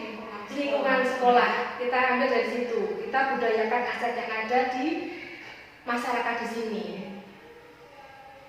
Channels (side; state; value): both; identical; correlation 1.00